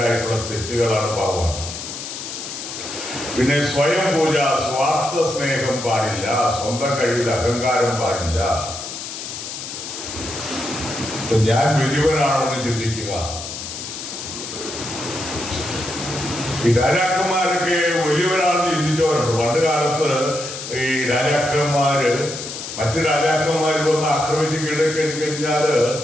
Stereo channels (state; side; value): noise; left; hiss, 8 dB below the sound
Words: തെറ്റുകളാണ്, പാവമാണ്. പിന്നെ സ്വയം പൂജ, സ്വാർത്ഥ സ്നേഹം പാടില്ല, സ്വന്തം കഴിവിൽ അഹങ്കാരം പാടില്ല. ഞാൻ വലിയവനാണെന്ന് ചിന്തിക്കുക. ഈ രാജാക്കന്മാരൊക്കെ വലിയവരാണെന്ന് ചിന്തിച്ചവരുണ്ട്. പണ്ട് കാലത്ത് ഈ രാജാക്കന്മാര് മറ്റു രാജാക്കന്മാർ വന്ന് ആക്രമിച്ച് കീഴടക്കിക്കഴിഞ്ഞാല്